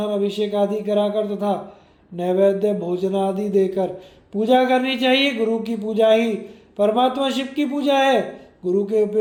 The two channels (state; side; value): identical; both; correlation 1.00